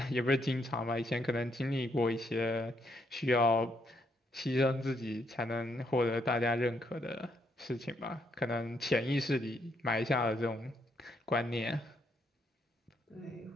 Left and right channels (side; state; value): both; normal; correlation 0.75